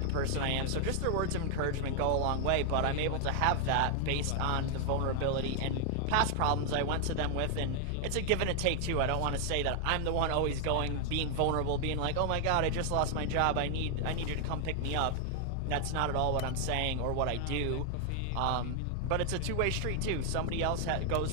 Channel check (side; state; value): both; different; correlation 0.00